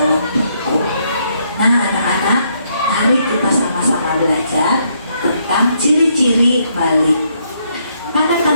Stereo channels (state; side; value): inverted; both; correlation -0.73